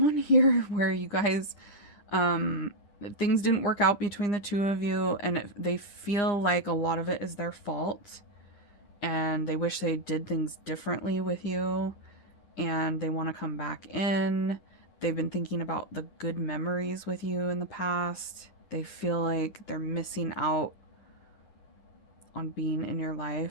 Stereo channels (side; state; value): right; late; 9.8 ms